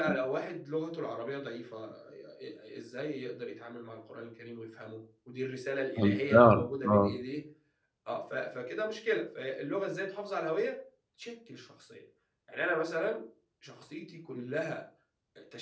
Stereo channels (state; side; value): identical; both; correlation 1.00